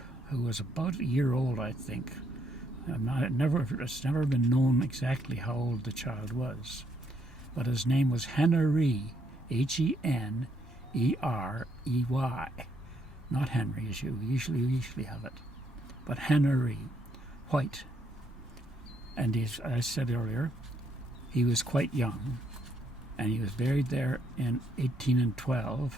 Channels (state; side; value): normal; both; correlation 0.73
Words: who was about a year old, I think. It's never been known exactly how old the child was, but his name was Henry, Henerey, not Henry as you usually have it, but Henry, white. And as I said earlier, he was quite young, and he was buried there in